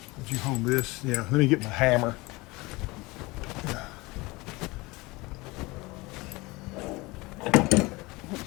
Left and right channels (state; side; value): quieter; right; 22.9 dB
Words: Would you hold this? Yeah, let me get my hammer.